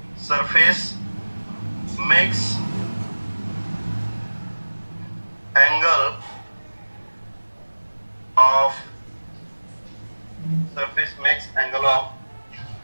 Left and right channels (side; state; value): both; inverted; correlation -1.00